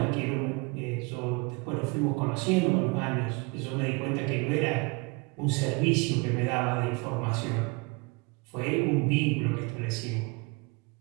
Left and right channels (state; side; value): quieter; left; 28.7 dB